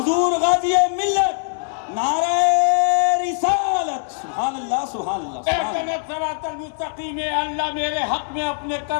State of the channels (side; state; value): right; silent; digital silence